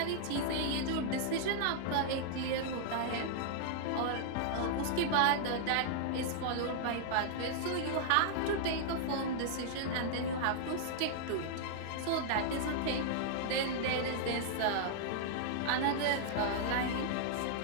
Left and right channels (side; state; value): both; different; correlation -0.01